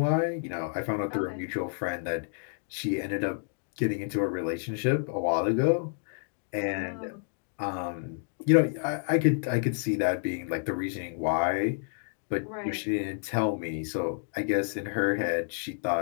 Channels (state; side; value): silent; right; digital silence